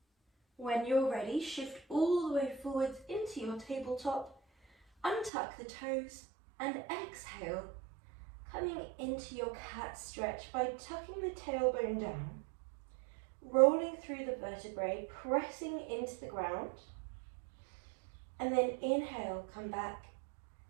When you're ready, shift all the way forwards into your tabletop, untuck the toes and exhale, coming into your cat stretch by tucking the tailbone down. Rolling through the vertebrae, pressing into the ground, and then inhale, come back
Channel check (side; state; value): left; drops out; at 5.3 s